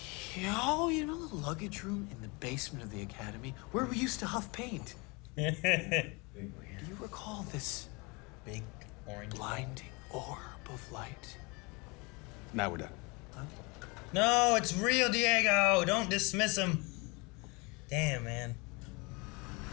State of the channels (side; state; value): right; quieter; 28.1 dB